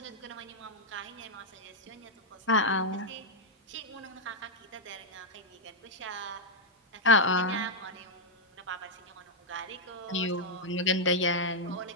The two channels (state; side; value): normal; both; correlation -0.02